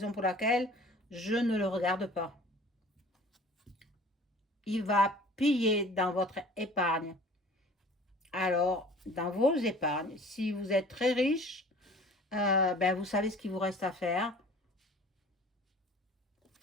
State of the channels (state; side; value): normal; both; correlation 0.47